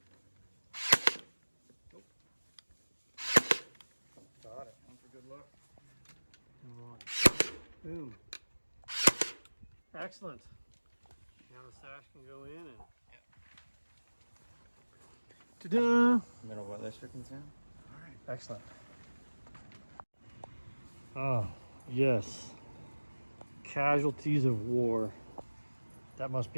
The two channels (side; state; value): both; inverted; correlation -1.00